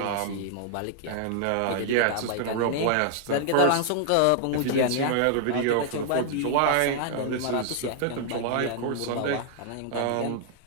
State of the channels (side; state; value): both; different; correlation 0.00